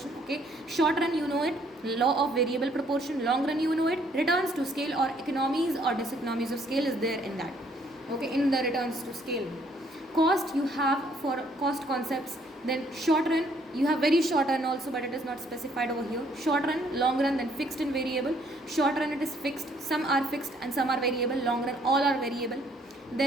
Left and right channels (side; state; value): both; normal; correlation 0.65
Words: okay. Short run, it, law of variable proportion. Long run, it, returns to scale or economies or diseconomies of scale is there in that, okay, in the returns to scale. Cost you have for cost concepts. Then short run, you have very short run also, but it is not specified over here. Short run, long run, then fixed and variable. Short run, it is fixed, some are fixed and some are variable. Long run, all are variable.